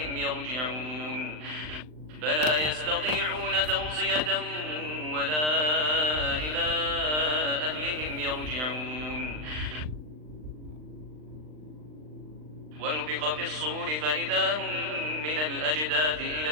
يرجعون فلا يستطيعون توصية ولا إلى أهلهم يرجعون ونفخ في الصور فإذا هم من الأجداث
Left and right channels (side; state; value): left; late; 39 ms